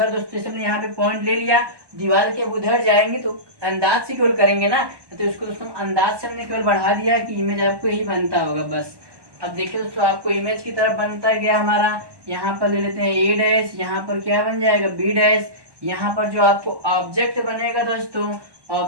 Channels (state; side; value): late; left; 1.1 ms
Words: दोस्तों, जैसे हमने यहाँ पे पॉइंट ले लिया, दीवार के उधर जाएंगे तो अंदाज से केवल करेंगे ना, तो उसको दोस्तों अंदाज से हमने केवल बढ़ा दिया कि इमेज आपको यही बनता होगा बस। अब देखिए दोस्तों आपको इमेज की तरफ बनता गया हमारा, यहाँ पर ले लेते हैं ए डैश, यहाँ पर क्या बन जाएगा बी डैश, यहाँ पर जो आपको ऑब्जेक्ट बनेगा दोस्तों,